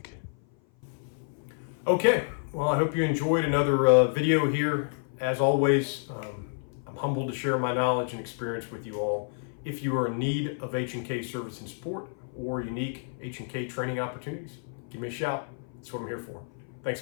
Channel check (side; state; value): right; silent; 56 dB below the other